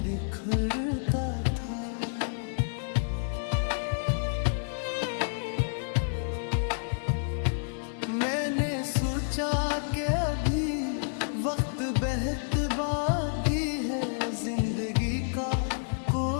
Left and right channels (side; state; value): right; silent; 58 dB below the other